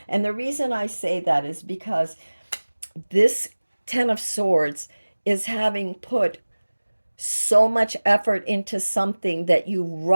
And the reason I say that is because this Ten of Swords is having put so much effort into something that you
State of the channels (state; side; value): inverted; both; correlation -1.00